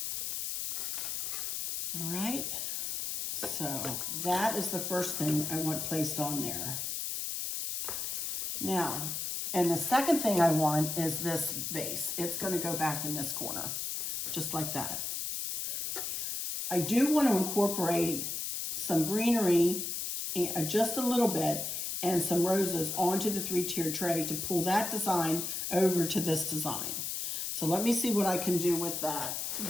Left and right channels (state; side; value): noise; left; hiss, 3 dB below the sound